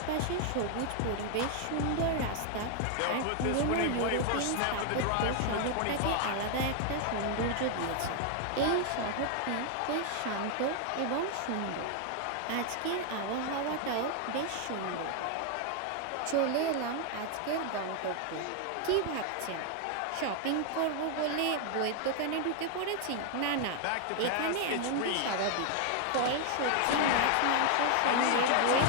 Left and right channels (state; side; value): different; both; correlation 0.00